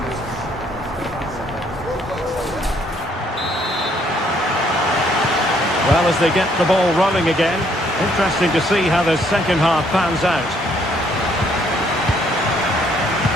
Well, as they get the ball rolling again, interesting to see how the second half pans out.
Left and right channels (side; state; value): both; normal; correlation 0.67